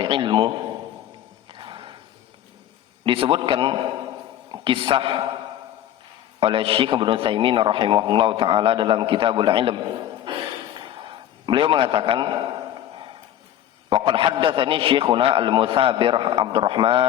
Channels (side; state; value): right; quieter; 11.6 dB